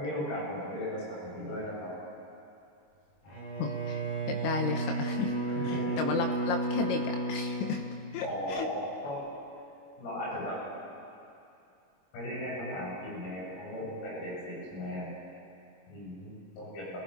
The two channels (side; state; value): right; late; 22 ms